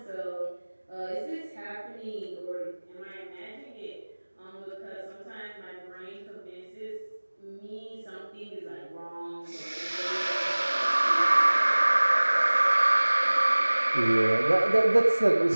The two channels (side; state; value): both; inverted; correlation -1.00